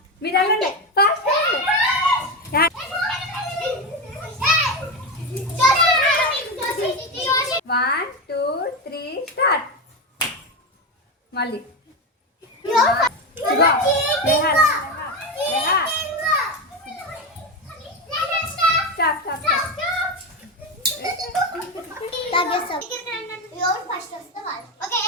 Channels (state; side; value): normal; both; correlation 0.15